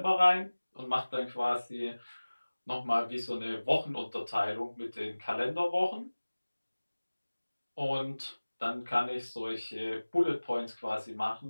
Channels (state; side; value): inverted; both; correlation -1.00